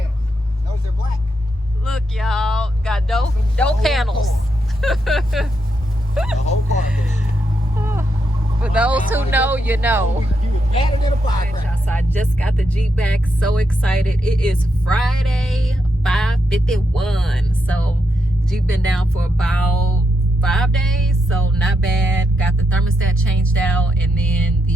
Notice they're black. Look, y'all. Got door panels. The whole car. For those who know, you know. You was better than a firecracker. So I just got the Jeep back. So excited. It is Friday, 5:51. So Jeep been down for about 5 days. So not bad. Got the thermostat changed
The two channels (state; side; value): normal; both; correlation 0.82